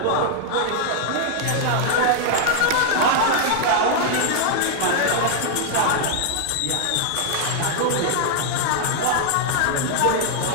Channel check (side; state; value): both; different; correlation 0.00